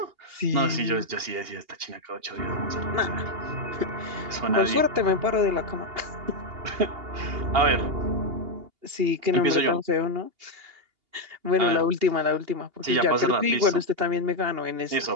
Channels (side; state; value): left; late; 2.8 ms